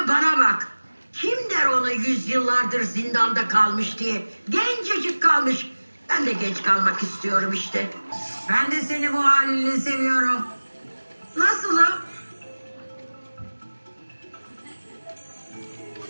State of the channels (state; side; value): inverted; both; correlation -1.00